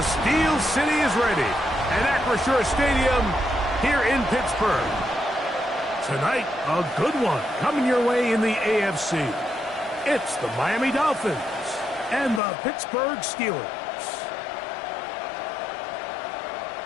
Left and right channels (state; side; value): drops out; right; at 12.4 s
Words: Steel City is ready at Acrisure Stadium here in Pittsburgh. Tonight, a good one coming your way in the AFC. It's the Miami Dolphins and the Pittsburgh Steelers.